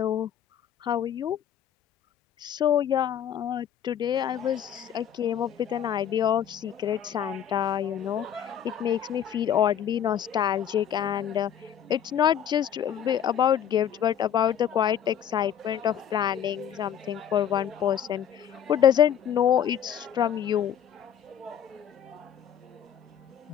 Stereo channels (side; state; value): right; quieter; 9.3 dB